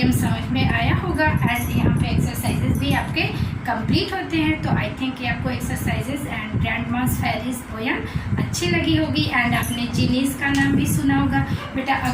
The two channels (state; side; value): identical; both; correlation 1.00